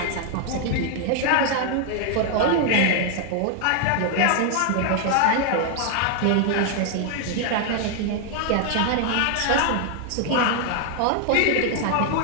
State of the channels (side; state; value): both; different; correlation 0.00